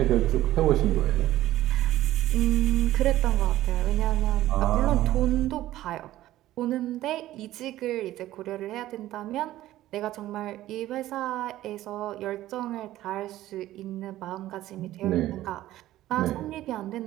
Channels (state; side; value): quieter; left; 14.7 dB